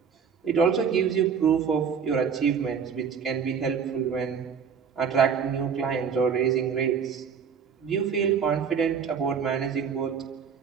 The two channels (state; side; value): quieter; left; 6.8 dB